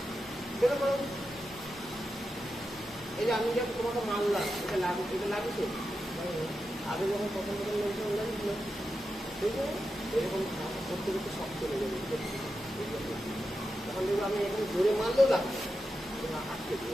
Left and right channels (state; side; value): normal; both; correlation 0.89